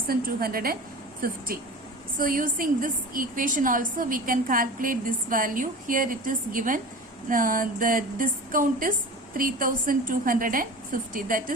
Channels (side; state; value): both; normal; correlation 0.34